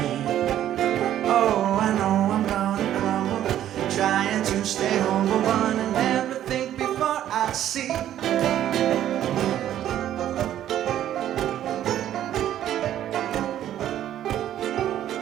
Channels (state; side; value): quieter; left; 11.7 dB